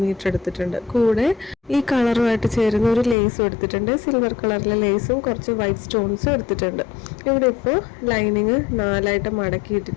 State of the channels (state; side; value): drops out; right; at 3.2 s